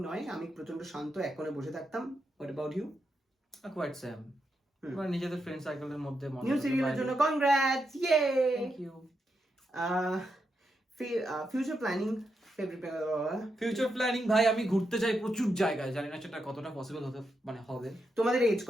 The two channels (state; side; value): normal; both; correlation 0.84